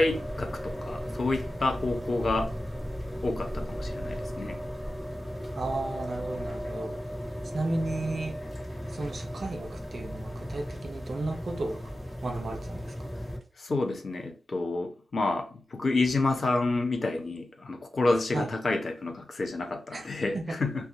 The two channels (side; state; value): both; normal; correlation 0.93